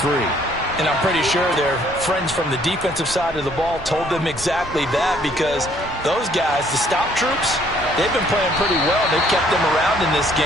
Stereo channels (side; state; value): both; normal; correlation 0.63